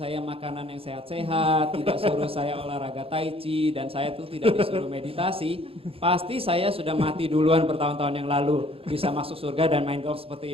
makanan yang sehat-sehat, tidak suruh saya olahraga tai chi, dan saya tuh tidak disuruh meditasi, pasti saya sudah mati duluan bertahun-tahun yang lalu, bisa masuk surga dan main golf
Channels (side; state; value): left; late; 0.27 ms